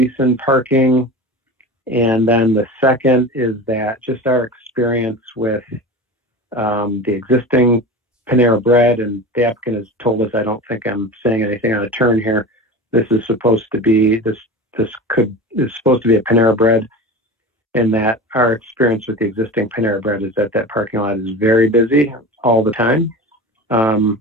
in parking. And then the second is that just our experience with the existing Panera Bread, and the applicant has told us, I don't think I'm saying anything on a turn here, this is supposed to be, this is supposed to be a Panera Bread, and that our experience with the existing Panera Bread is that that parking lot is very busy all the time.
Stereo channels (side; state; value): both; normal; correlation 0.31